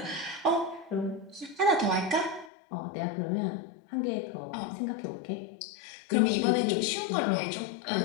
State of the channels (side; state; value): right; drops out; at 2.5 s